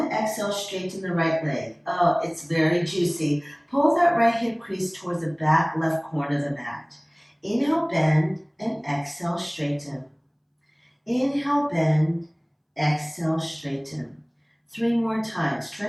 exhale, straighten the right leg. Oh, it's very juicy. Pull that right hip crease towards the back left corner of the mat. Inhale, bend, and exhale, straighten. Inhale, bend, exhale, straighten. 3 more times. Try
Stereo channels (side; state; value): both; identical; correlation 1.00